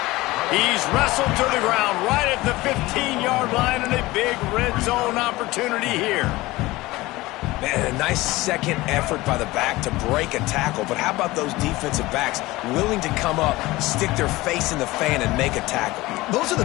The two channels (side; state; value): right; quieter; 19.6 dB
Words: He's wrestled to the ground right at the 15-yard line, and a big red zone opportunity here. Man, a nice second effort by the back to break a tackle, but how about those defensive backs willing to come up, stick their face in the fan, and make a tackle? Those are